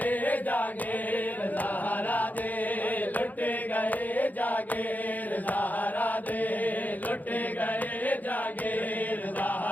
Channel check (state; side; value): late; right; 0.081 ms